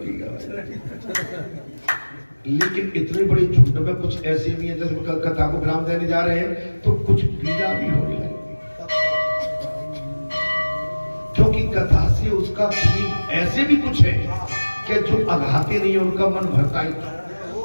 का, लेकिन इतने बड़े झुंड में कुछ ऐसे भी है जैसे कथा को ब्राह्म देने जा रहे हैं तो कुछ पीड़ा भी होने लगी, क्योंकि कथा से उसका ऐसे भी कुछ है कि जो अघाते नहीं उनका मन भरता ही था।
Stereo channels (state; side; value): inverted; both; correlation -1.00